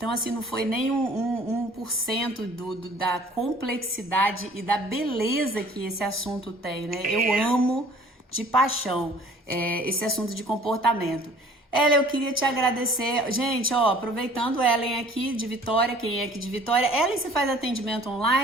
assim, não foi nem 1% da complexidade e da beleza que esse assunto tem, né? Eu amo de paixão esse assunto de comportamento. Ellen, eu queria te agradecer. Gente, ó, aproveitando Ellen aqui de Vitória, quem é aqui de Vitória. Ellen, você faz atendimento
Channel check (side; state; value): both; normal; correlation 0.52